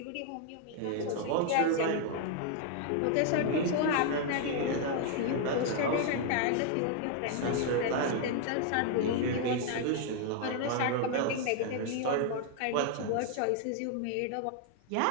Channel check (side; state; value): both; different; correlation 0.00